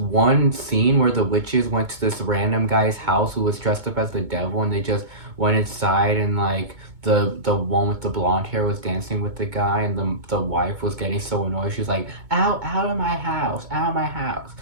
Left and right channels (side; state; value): left; late; 2.2 ms